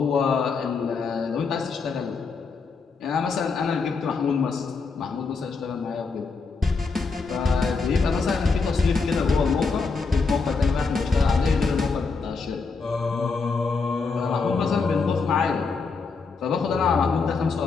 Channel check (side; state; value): right; quieter; 4.6 dB